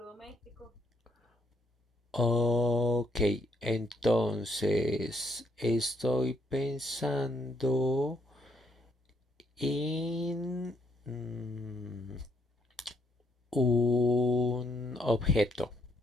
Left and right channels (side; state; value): both; normal; correlation 0.72